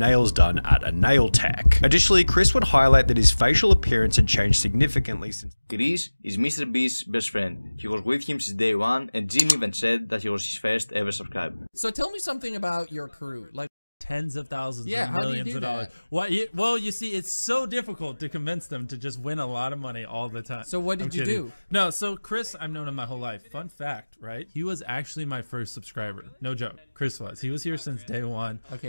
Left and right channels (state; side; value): inverted; both; correlation -1.00